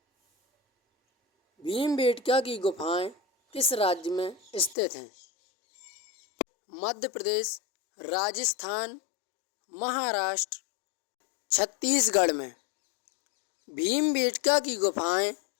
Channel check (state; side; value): drops out; right; at 4.8 s